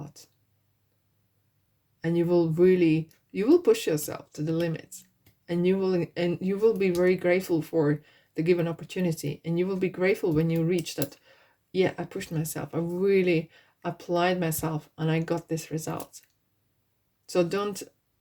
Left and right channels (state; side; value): identical; both; correlation 1.00